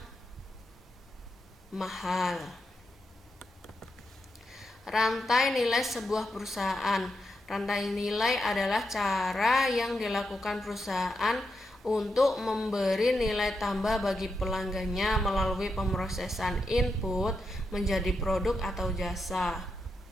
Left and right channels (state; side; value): normal; both; correlation 0.85